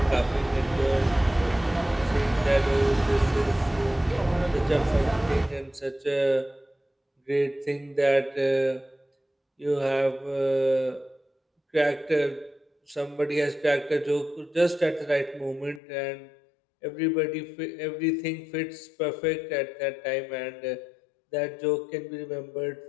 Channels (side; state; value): right; drops out; at 15.8 s